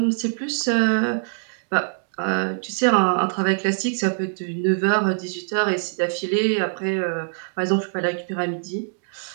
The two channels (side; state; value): left; silent; digital silence